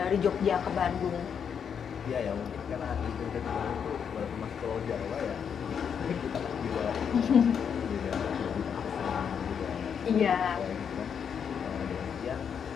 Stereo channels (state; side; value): quieter; right; 7.4 dB